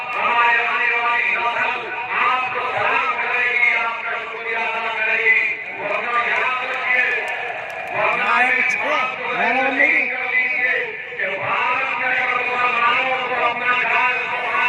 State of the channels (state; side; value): identical; both; correlation 1.00